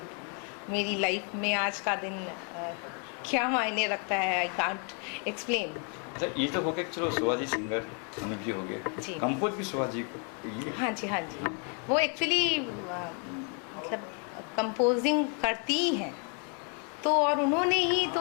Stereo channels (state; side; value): quieter; right; 39.0 dB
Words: मेरी लाइफ में आज का दिन क्या मायने रखता है। I can't explain. अच्छा, ये तो हो गया, चलो शिवाजी सिंगर अनुप जी हो जी। गए, कंपोज भी शिवाजी ये। हाँ जी, हाँ जी। वो एक्चुअली मतलब कंपोजिंग करती ही हैं, तो और उन्होंने ही